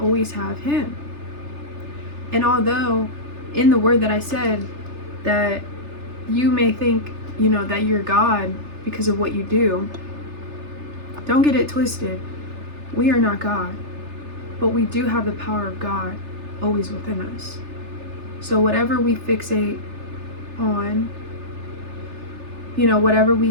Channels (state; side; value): late; left; 3.3 ms